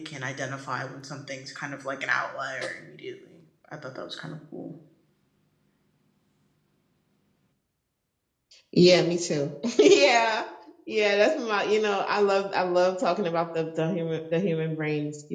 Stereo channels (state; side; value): identical; both; correlation 1.00